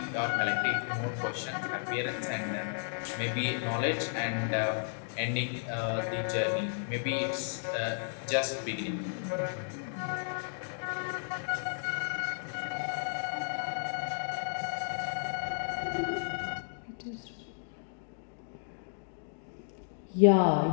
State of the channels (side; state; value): right; silent; digital silence